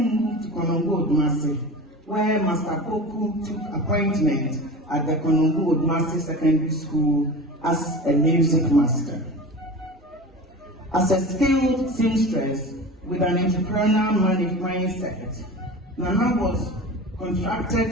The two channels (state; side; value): normal; both; correlation 0.32